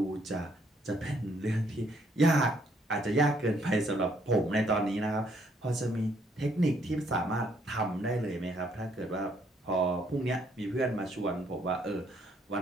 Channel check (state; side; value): normal; both; correlation 0.68